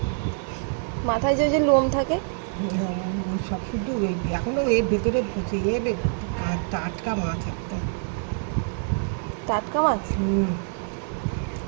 মাথায় যে লোম থাকে। ওই সব শুধু ওই এখনও এর ভেতরে পচে যাবে। টাটকা মাছ একদম। টাটকা মাছ।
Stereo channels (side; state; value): left; silent; 57 dB below the other